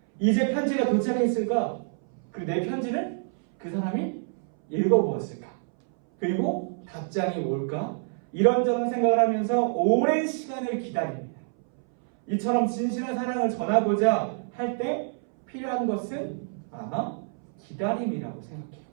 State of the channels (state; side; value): silent; left; 60 dB below the other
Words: 이제 편지가 도착했을까? 내 편지를 그 사람이 읽어보았을까? 그리고 답장이 올까? 이런저런 생각을 하면서 오랜 시간을 기다립니다. 이처럼 진실한 사랑을 전하고자 할 때 필요한 것은 아마 기다림이라고 생각해요.